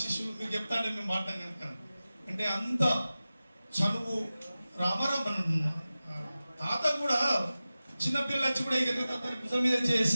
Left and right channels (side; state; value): both; inverted; correlation -0.95